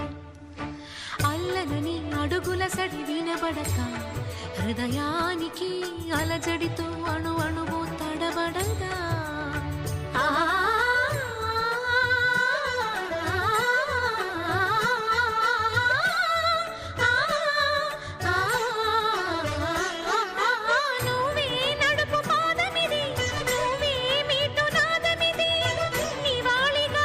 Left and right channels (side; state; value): both; identical; correlation 1.00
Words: అల్లనని అడుగుల సడి వినబడక హృదయానికి అలజడితో అణు అణువు తడబడదా